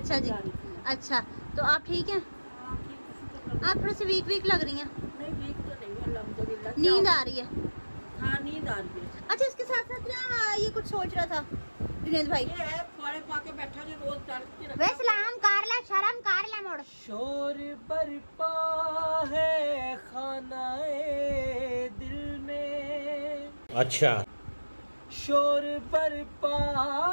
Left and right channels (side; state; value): both; inverted; correlation -1.00